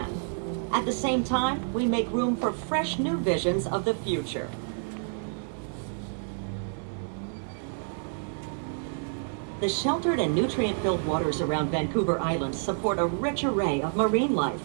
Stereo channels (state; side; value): silent; left; digital silence